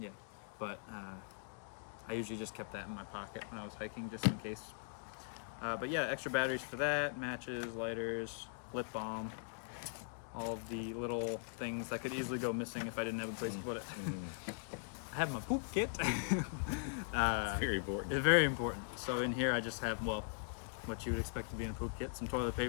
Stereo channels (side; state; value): right; silent; digital silence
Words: but I usually just kept that in my pocket when I was hiking just in case. But yeah, extra batteries for that, matches, lighters, lip balm, all of the little things that could easily go missing if I didn't have a place to put it. I have my poop kit. It's very important. It's very important. So in here I just have, well, what you would expect to be in a poop kit, some toilet